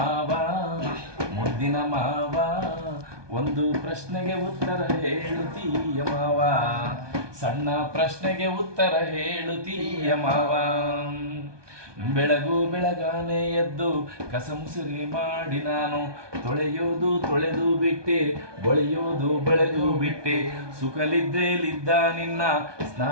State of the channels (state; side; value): late; left; 1.2 ms